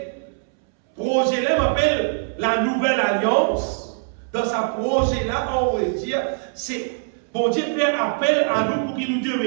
là m'appelle la nouvelle alliance. Dans sa projet là, on va dire, c'est bon Dieu fait appel à nous pour qu'il nous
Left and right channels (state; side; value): silent; left; 64 dB below the other